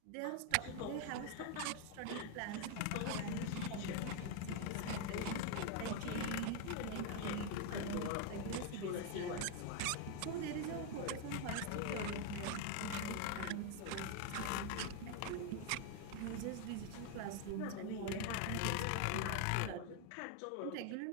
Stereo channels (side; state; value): both; different; correlation 0.01